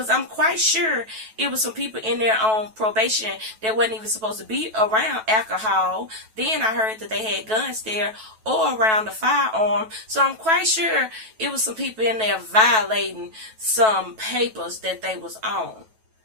I'm quite sure it was some people in there on probation that wasn't even supposed to be around alcohol. Then I heard that they had guns there or around the firearm. So I'm quite sure it was some people in there violating some papers that they was on.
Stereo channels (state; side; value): late; left; 9.2 ms